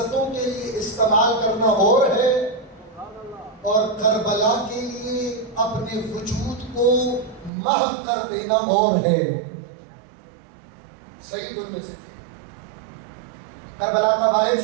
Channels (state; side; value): drops out; left; at 7.5 s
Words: کے لیے استعمال کرنا اور ہے, اور کربلا کے لیے اپنے وجود کو محو کر دینا اور ہے. سعید ان میں سے تھے. کربلا کا واحد